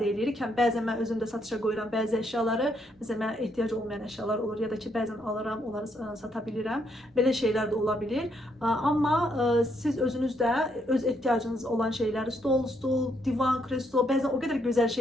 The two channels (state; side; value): normal; both; correlation 0.74